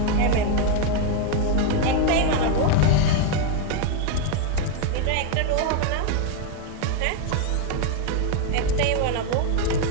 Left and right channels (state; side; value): different; both; correlation 0.01